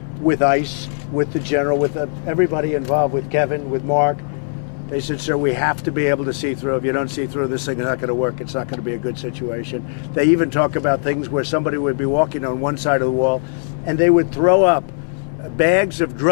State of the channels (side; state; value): right; silent; 65 dB below the other